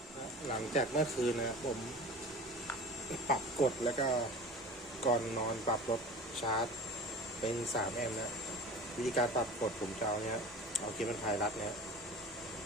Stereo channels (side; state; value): both; normal; correlation 0.37